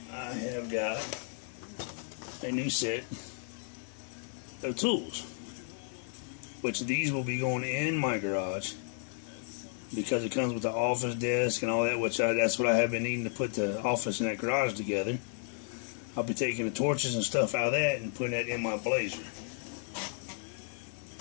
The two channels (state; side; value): silent; right; digital silence